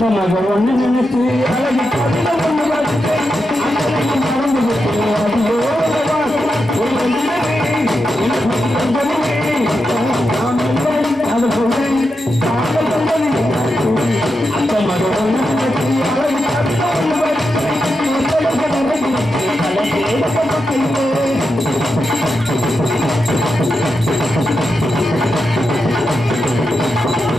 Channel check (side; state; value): both; normal; correlation 0.87